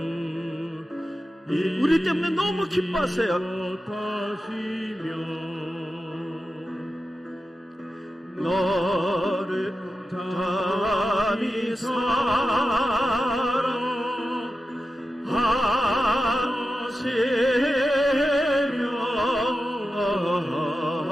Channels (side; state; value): both; normal; correlation 0.92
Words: 우리 때문에 너무 기뻐하세요. 너를 감히